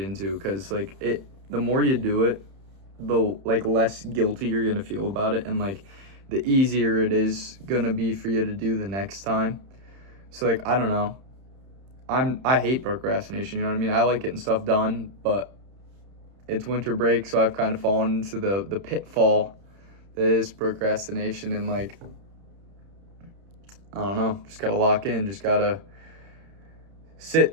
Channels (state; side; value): late; left; 31 ms